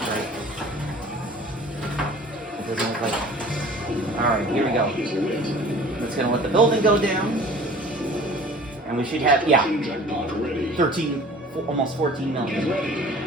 strike. It doesn't look like. All right, here we go. That's gonna let the building go down, and we should have 13. Almost 14 million.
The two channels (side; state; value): both; normal; correlation 0.46